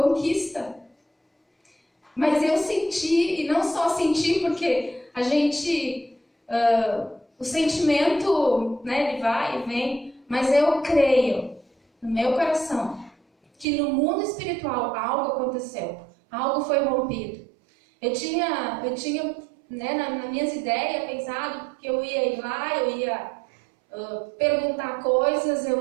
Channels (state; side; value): drops out; left; at 13.7 s